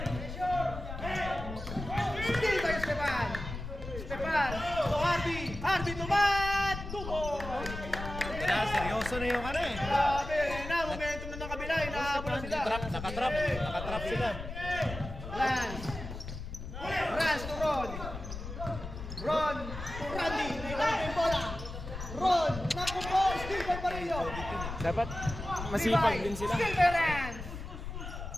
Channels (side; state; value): left; noise; rumble, 8 dB below the sound